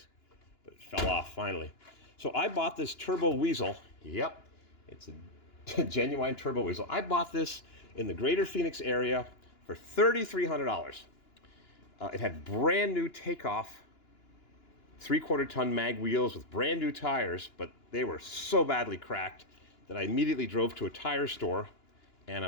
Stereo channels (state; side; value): late; right; 2.9 ms